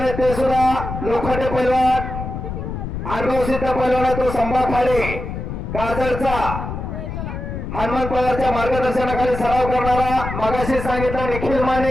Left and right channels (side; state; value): left; noise; rumble, 6 dB below the sound